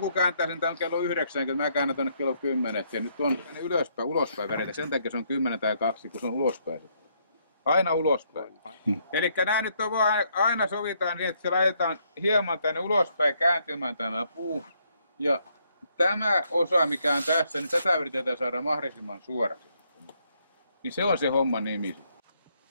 kääntää sen tämän kello 9, kun mä käännän tuonne kello 10. Ja nyt on ylöspäin, ulospäin välillä. Sen takia se on 10 tai 2, kun se on ulospäin. Aina ulospäin. Eli nämä nyt on vaan, aina sovitaan niin, että se laitetaan hieman tänne ulospäin kääntymään tämä puu. Ja tämä osa, mikä on tässä, niin tätä yritetään saada mahdollisimman suoraksi. Niin se on se homman nimi.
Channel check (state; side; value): inverted; both; correlation -0.72